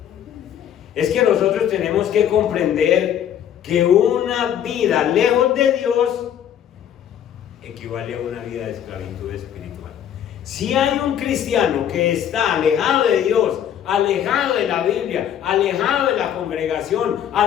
es que nosotros tenemos que comprender que una vida lejos de Dios equivale a una vida de esclavitud espiritual. Si hay un cristiano que está alejado de Dios, alejado de la Biblia, alejado de la congregación,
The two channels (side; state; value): right; quieter; 9.8 dB